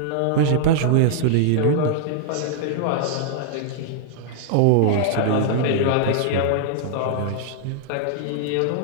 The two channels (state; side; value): different; both; correlation -0.01